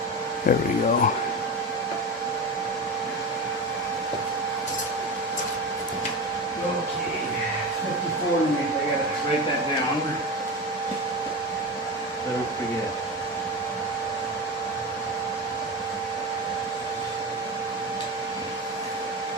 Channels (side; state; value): both; normal; correlation 0.22